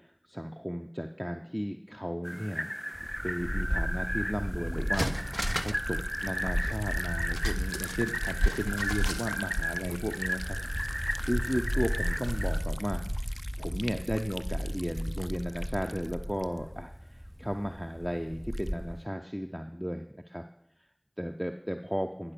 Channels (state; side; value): identical; both; correlation 1.00